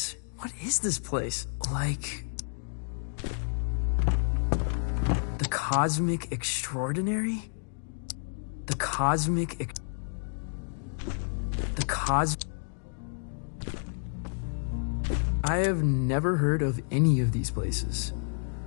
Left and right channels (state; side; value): silent; right; digital silence